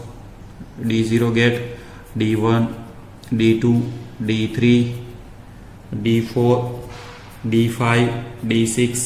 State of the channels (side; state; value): both; identical; correlation 1.00